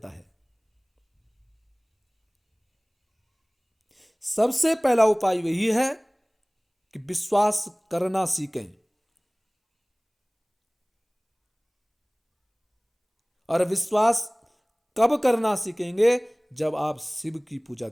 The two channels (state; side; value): identical; both; correlation 1.00